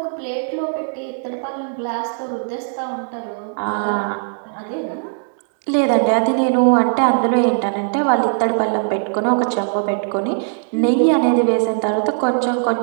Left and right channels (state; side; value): silent; left; digital silence